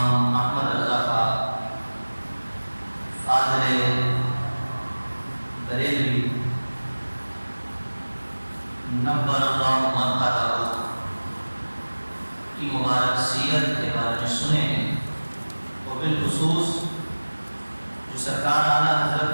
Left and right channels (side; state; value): both; inverted; correlation -1.00